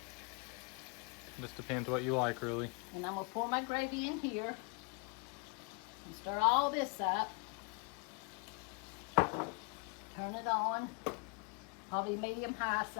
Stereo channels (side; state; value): right; quieter; 32.5 dB